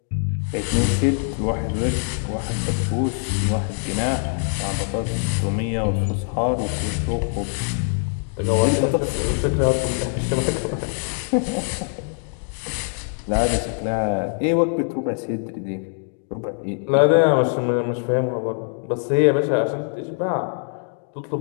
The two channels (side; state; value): right; silent; 56 dB below the other